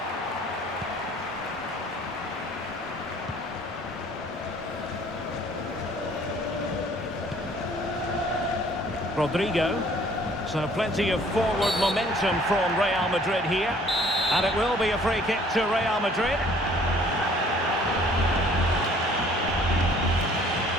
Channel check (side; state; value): both; normal; correlation 0.56